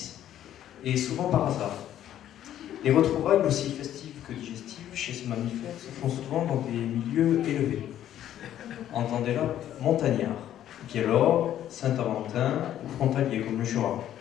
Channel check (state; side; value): quieter; right; 11.5 dB